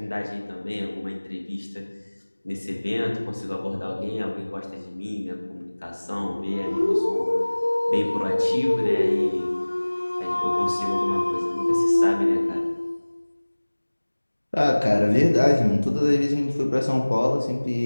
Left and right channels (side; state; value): both; inverted; correlation -1.00